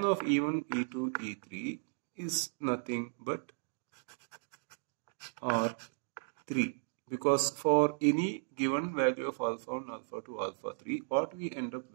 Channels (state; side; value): silent; left; digital silence